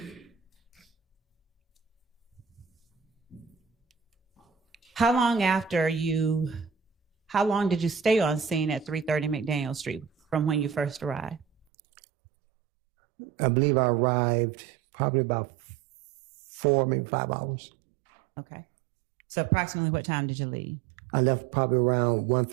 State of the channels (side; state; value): left; drops out; at 11.7 s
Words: How long did you stay on scene at 330 McDaniel Street from when you first arrived? I believe I arrived probably about 4, maybe 5 hours. Okay. So approximately what time did you leave? I left probably around